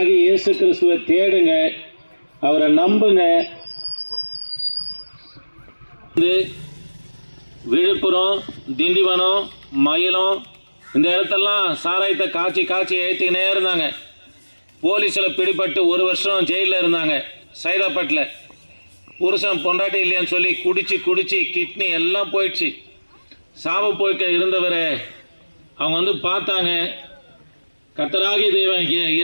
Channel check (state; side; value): inverted; both; correlation -1.00